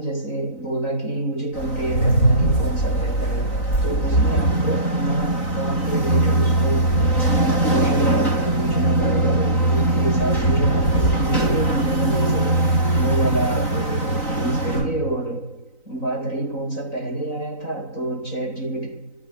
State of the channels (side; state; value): right; late; 3.9 ms